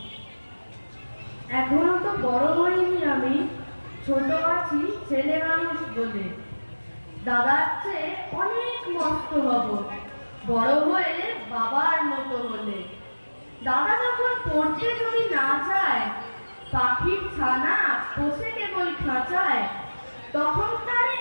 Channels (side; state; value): both; inverted; correlation -1.00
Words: এখনো তো বড় হইনি আমি, ছোট আছি ছেলে মানুষ বলে। দাদার চেয়ে অনেক মস্ত হব বড় হয়ে বাবার মতো হলে। দাদা যখন পড়তে যদি না চায়, পাখির ছানা বসে কেবল খাঁচায়, তখন তারে